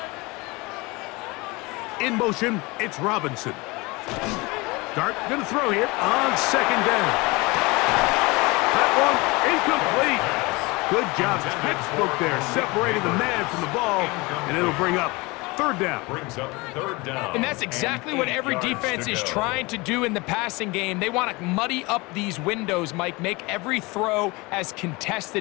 In motion, it's Robinson. Dart going to throw here on second down. That one incomplete. Good job, textbook there, separating the man from the ball, and it'll bring up third down. And that's exactly what every defense is trying to do in the passing game. They want to muddy up these windows, Mike, make every throw as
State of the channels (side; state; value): right; quieter; 24.5 dB